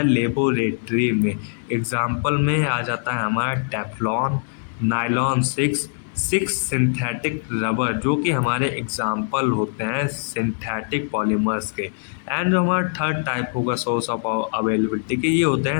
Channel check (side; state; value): right; silent; 60 dB below the other